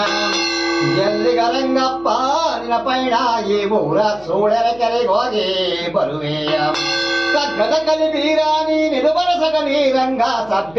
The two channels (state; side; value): noise; left; hum, 25 dB below the sound